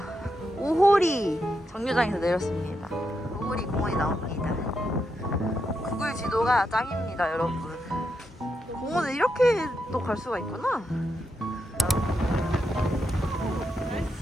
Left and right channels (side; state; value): both; normal; correlation 0.83